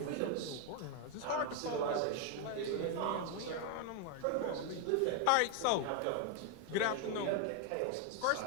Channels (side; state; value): both; different; correlation 0.01